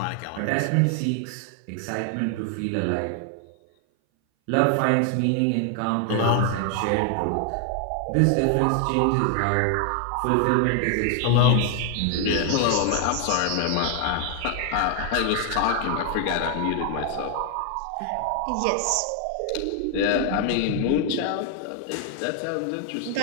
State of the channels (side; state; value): both; different; correlation 0.00